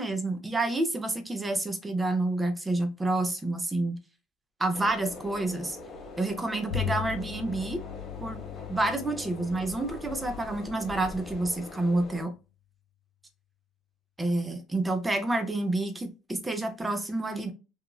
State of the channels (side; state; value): both; normal; correlation 0.81